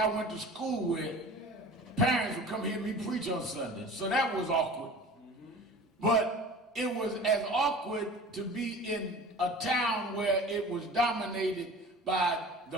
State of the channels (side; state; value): both; normal; correlation 0.41